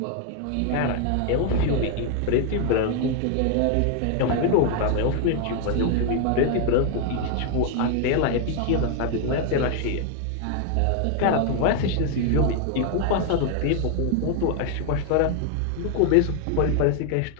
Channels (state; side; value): different; both; correlation 0.00